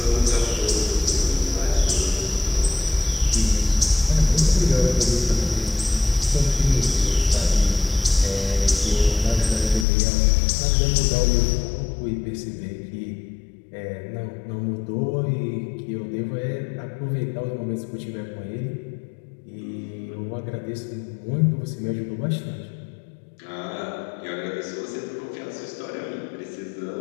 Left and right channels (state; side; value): drops out; right; at 9.9 s